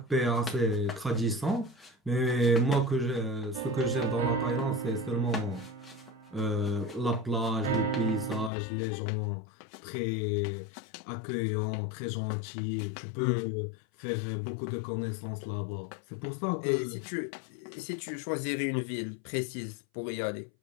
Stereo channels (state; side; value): drops out; right; at 8.5 s